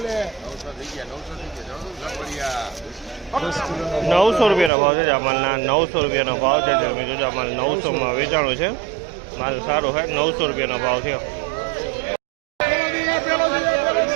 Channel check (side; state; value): left; drops out; at 4.7 s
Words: 900 રૂપિયાનો ભાવ છે આ માલના 900 રૂપિયાનો ભાવ છે તમે જોજો આ માલ 900માં વેચાણો છે માલ સારો છે 900 રૂપિયાનો ભાવ છે.